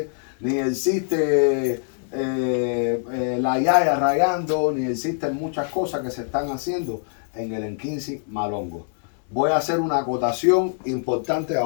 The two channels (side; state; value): right; silent; digital silence